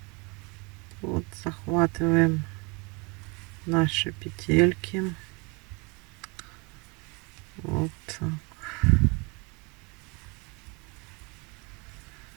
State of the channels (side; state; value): left; quieter; 29.8 dB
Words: Вот захватываем наши петельки. Вот так.